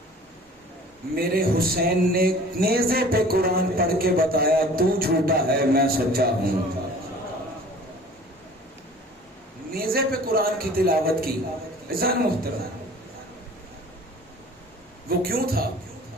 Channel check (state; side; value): normal; both; correlation 0.46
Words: میرے حسین نے نیزے پہ قرآن پڑھ کے بتایا تو جھوٹا ہے میں سچا ہوں. نیزے پہ قرآن کی تلاوت کی. عزیزان محترم, وہ کیوں تھا؟